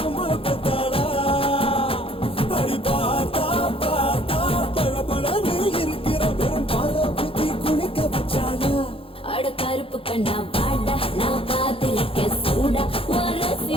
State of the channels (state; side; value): late; right; 0.27 ms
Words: பத்தாடா அடி பார்த்தா பார்த்தா பழபழன்னு இருக்கிற வெறும் பால புத்தி குளிக்க வச்சாடா அட கருப்பு கண்ணா வாடா நான் காத்திருக்க சூடா வரசி